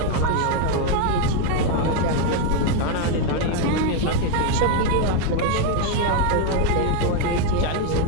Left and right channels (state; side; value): different; both; correlation 0.02